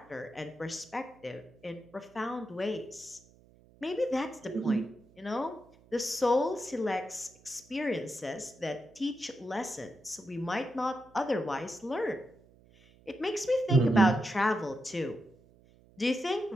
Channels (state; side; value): noise; right; hum, 27 dB below the sound